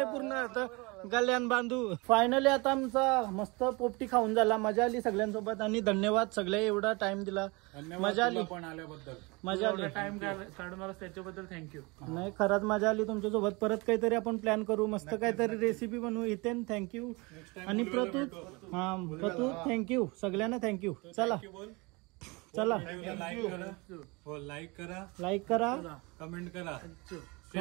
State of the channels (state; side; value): quieter; left; 26.6 dB